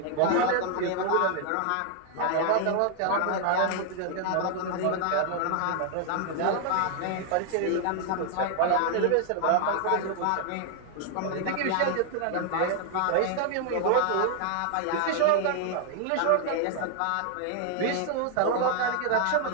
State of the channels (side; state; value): both; different; correlation 0.00